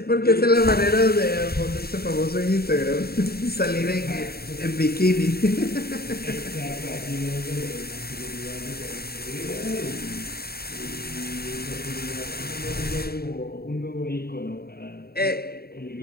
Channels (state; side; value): late; right; 0.45 ms